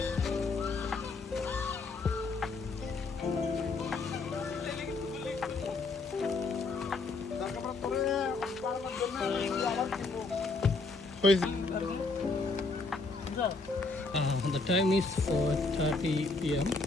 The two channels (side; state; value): right; quieter; 3.7 dB